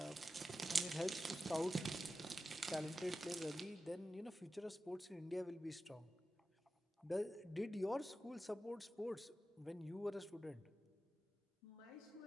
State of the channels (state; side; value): normal; both; correlation 0.92